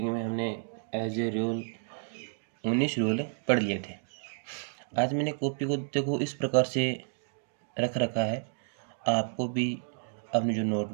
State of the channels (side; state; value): left; silent; digital silence